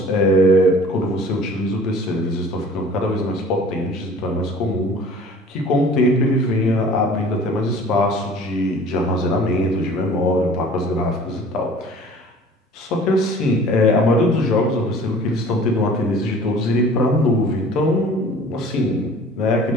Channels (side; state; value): both; normal; correlation 0.47